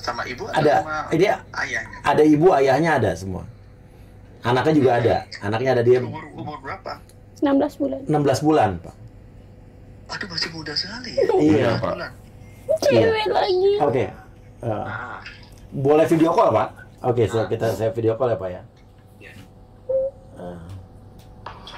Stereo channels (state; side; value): identical; both; correlation 1.00